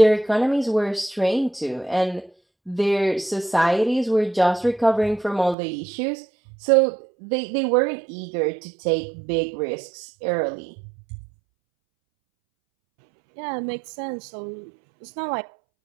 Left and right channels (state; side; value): drops out; left; at 5.6 s